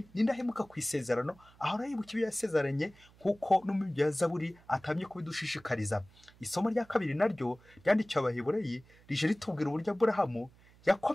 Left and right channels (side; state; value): right; noise; hum, 27 dB below the sound